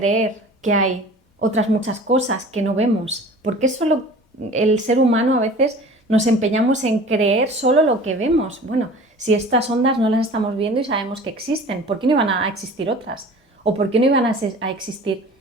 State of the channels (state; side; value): normal; both; correlation 0.43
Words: que hay otras muchas cosas que no vemos? ¿Por qué solo el ser humano a veces nos empeñamos en creer solo lo que vemos? Bueno, si estas ondas no las estamos viendo y sabemos que existen, ¿por qué no iban a existir otras? ¿O por qué no iban a existir